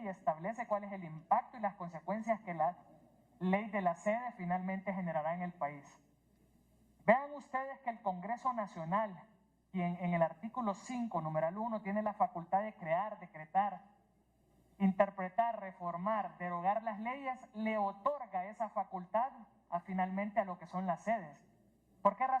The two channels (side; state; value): both; identical; correlation 1.00